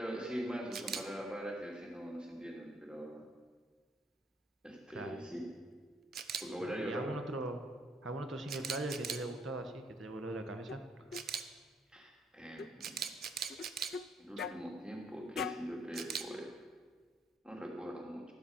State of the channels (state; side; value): normal; both; correlation 0.70